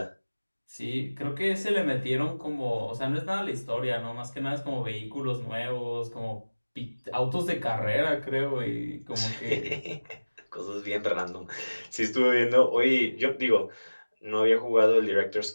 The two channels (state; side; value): inverted; both; correlation -1.00